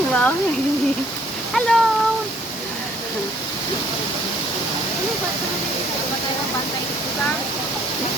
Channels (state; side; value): normal; both; correlation 0.61